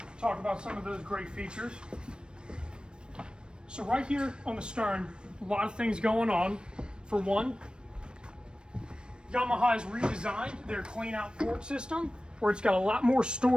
talk about some of those great features. So right here on the stern, a lot of things going on. For one, Yamaha has redesigned their clean out port system, where it's got a lot more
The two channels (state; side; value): late; left; 0.053 ms